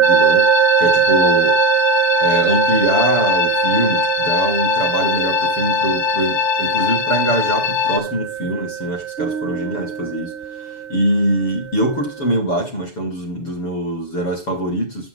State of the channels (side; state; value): right; late; 6.9 ms